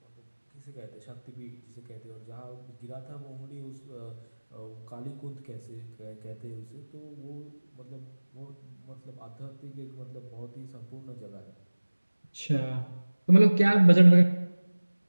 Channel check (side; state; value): both; inverted; correlation -1.00